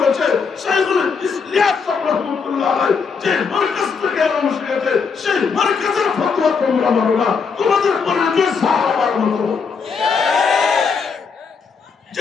শাইখুল ইলিয়াস সাহেব রাহমাতুল্লাহ আলাইহি যে মার্কাজ থেকে আরম্ভ শিখেছে, সেই মার্কাজের ফতোয়া তোমরা মানো না, তোমাদের পরিচয় সাহাবার মতো।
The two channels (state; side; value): quieter; right; 5.5 dB